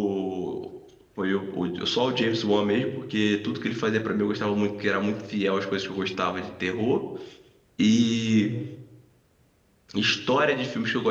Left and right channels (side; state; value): both; identical; correlation 1.00